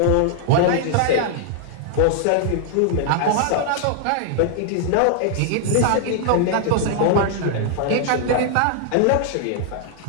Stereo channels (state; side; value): different; both; correlation 0.00